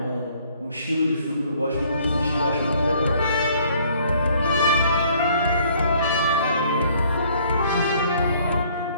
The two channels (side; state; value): both; inverted; correlation -0.60